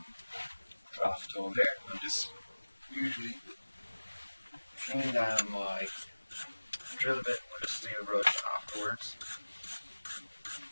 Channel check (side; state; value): both; inverted; correlation -1.00